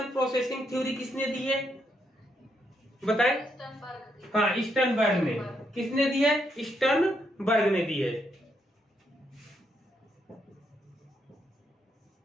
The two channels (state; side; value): normal; both; correlation 0.78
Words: प्रोसेसिंग थ्योरी किसने दी है बताए? हाँ, स्टर्नबर्ग ने। किसने दी है? स्टर्नबर्ग ने दी है।